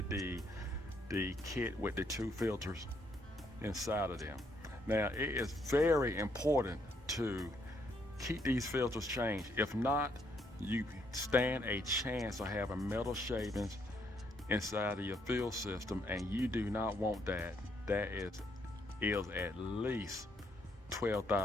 the kit with the two filters inside of them. Now, it is very important to keep these filters changed. If not, you stand a chance of having metal shavings inside of your fill system, and you do not want that. That is at least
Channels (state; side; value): normal; both; correlation 0.72